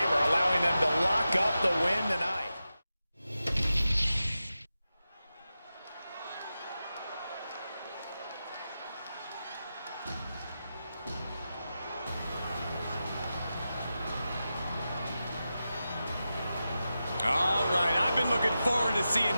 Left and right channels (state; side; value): inverted; both; correlation -0.92